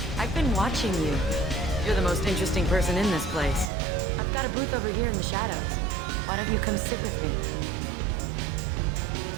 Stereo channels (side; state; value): left; drops out; at 3.7 s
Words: I've been watching you. You're the most interesting person in this place. I've got a booth over here in the shadows. Why don't you come sit with me?